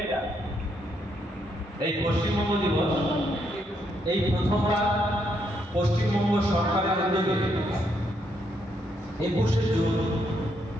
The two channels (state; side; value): normal; both; correlation 0.76